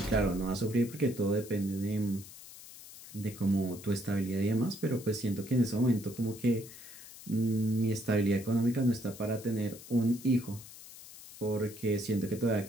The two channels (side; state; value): left; noise; hiss, 16 dB below the sound